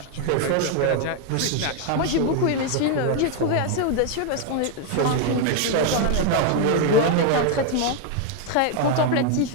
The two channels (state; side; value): different; both; correlation 0.01